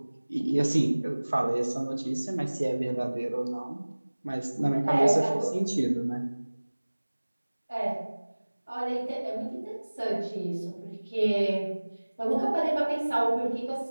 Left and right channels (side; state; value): both; inverted; correlation -1.00